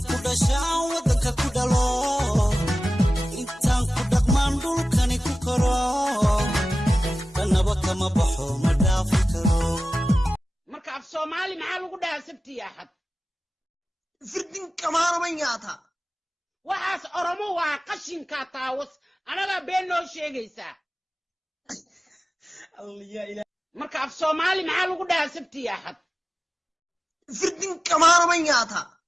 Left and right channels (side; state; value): both; normal; correlation 0.95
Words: ku dhashaan wadanka ku dhalo intaan ku dhaqmaan dhulkani ku koro danaba kama baxo ma dhaafi karo marka af Soomaali maxaa lagu dhahaa sabti axad firdin kamaana ma yaata waxaas oromo waa qashinka taawas anaga been noo sheegaysa marka af Soomaali maxaa lagu dhahaa sabti axad firdin kamaana ma yaata